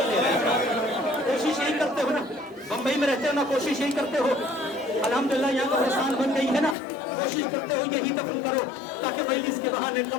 रह जाओ। कोशिश यही करते हो ना, बम्बई में रहते हो ना, कोशिश यही करते हो। अल्हम्दुलिल्लाह यहाँ कब्रिस्तान बन गई है ना, कोशिश करते हो यही दफन करो ताकि मजलिस के बहाने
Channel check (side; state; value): right; drops out; at 6.8 s